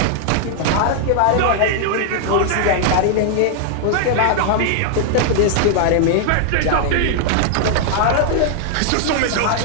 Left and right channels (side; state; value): both; different; correlation -0.01